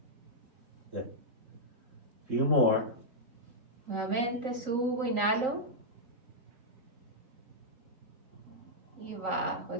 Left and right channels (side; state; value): left; late; 3.9 ms